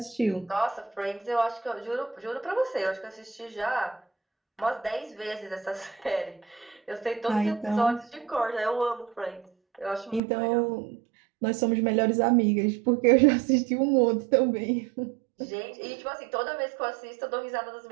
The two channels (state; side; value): drops out; left; at 10.2 s